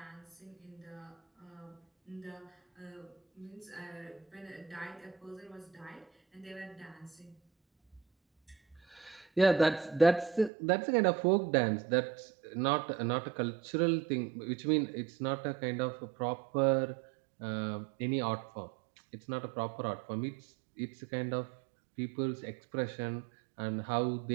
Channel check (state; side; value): drops out; left; at 10.5 s